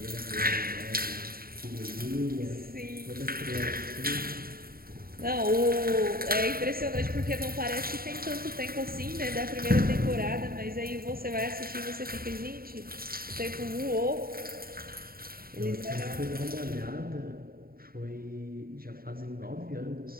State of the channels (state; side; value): late; left; 0.43 ms